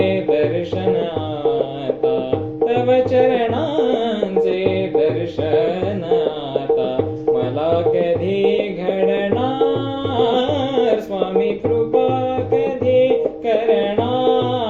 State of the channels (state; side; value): identical; both; correlation 1.00